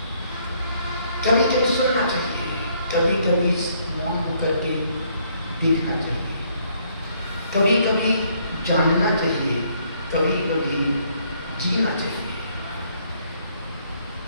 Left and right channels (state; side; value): inverted; both; correlation -0.68